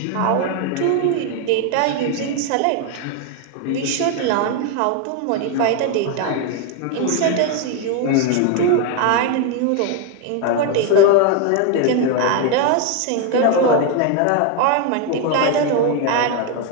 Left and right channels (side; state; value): both; different; correlation 0.01